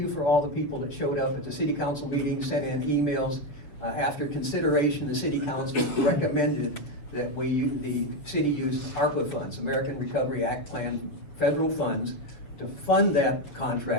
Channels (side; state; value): right; late; 7.1 ms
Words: for all the people that showed up at the City Council meeting, sent in emails. After consideration, the City Council recommended that the city use ARPA funds, American Recovery Act Plan federal funds, to fund that